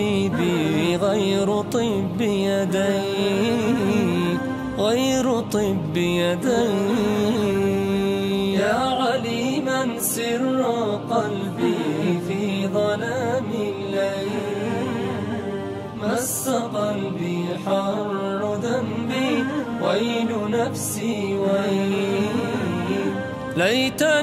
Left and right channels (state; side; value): identical; both; correlation 1.00